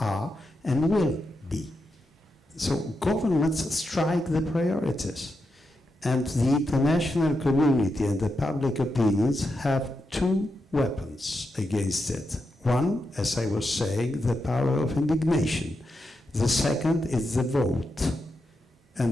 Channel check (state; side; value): normal; both; correlation 0.86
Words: are and will be. So governments strike the priorities. And the international community and the public opinions have two weapons against it. One, as I was saying, the power of indignation. The second is the vote.